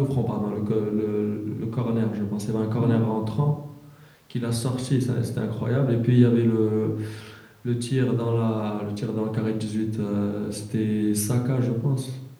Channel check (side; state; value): both; identical; correlation 1.00